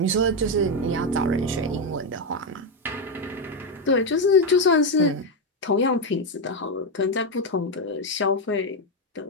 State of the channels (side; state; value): both; normal; correlation 0.07